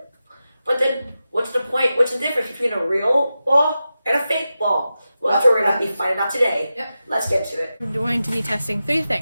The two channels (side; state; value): both; inverted; correlation -0.92